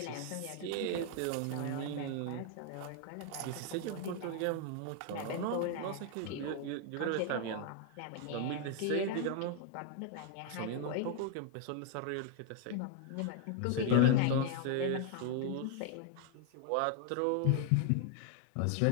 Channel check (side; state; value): both; different; correlation 0.00